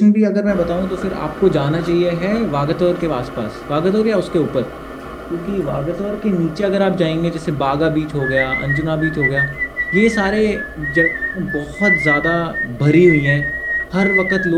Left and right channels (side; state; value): both; identical; correlation 1.00